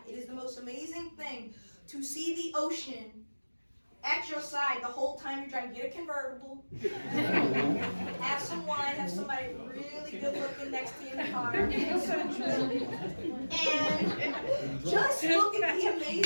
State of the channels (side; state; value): both; inverted; correlation -1.00